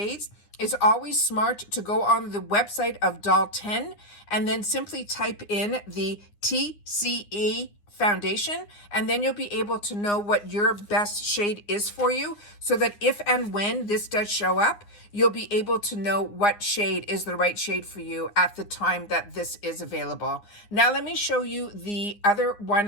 it's always smart to go on the website of Doll 10 and then simply type in the TCE foundation, and then you'll be able to know what your best shade is for you, so that if and when this does show up, you'll be able to know what shade is the right shade for you at the time that this is available. Now let me show you the other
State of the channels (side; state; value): right; late; 9.8 ms